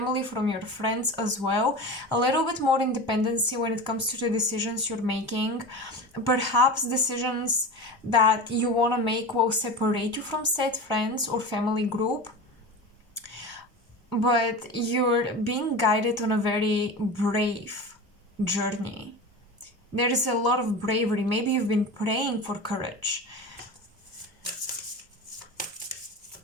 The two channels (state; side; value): normal; both; correlation 0.29